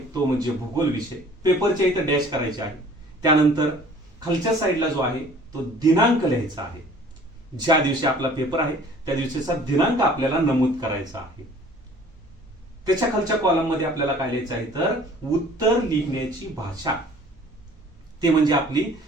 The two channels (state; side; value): normal; both; correlation 0.51